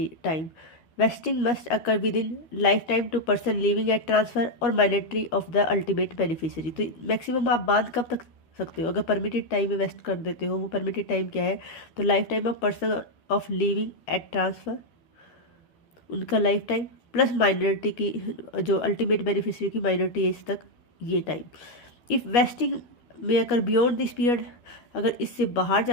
time. Vesting must occur within lifetime two person living at transfer और minority of the ultimate beneficiary. तो maximum आप बांध कब तक सकते हो? अगर परमिटेड टाइम में वेस्ट कर देते हो, वो परमिटेड टाइम क्या है? तो life time of person of living at transfer, उनका लाइफ टाइम प्लस माइनॉरिटी की जो अल्टीमेट बेनिफिशियरी की माइनॉरिटी एज तक, ये टाइम। इफ़ वेस्टिंग में अगर बियॉन्ड दिस पीरियड, अगर इससे बाहर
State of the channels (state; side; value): late; right; 13 ms